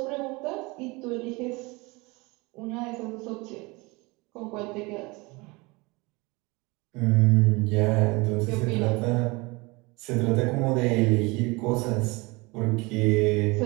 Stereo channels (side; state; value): left; quieter; 25.1 dB